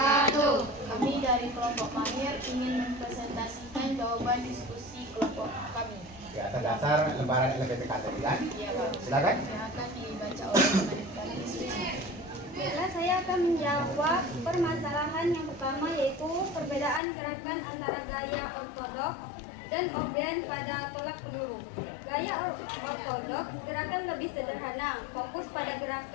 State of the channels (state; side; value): drops out; right; at 17.0 s